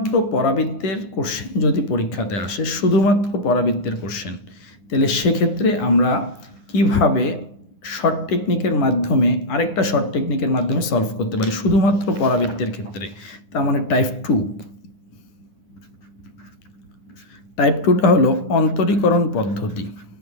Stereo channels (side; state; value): right; late; 9.9 ms